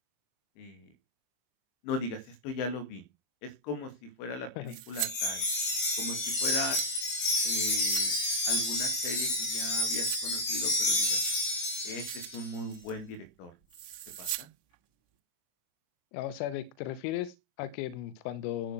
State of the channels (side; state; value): right; late; 24 ms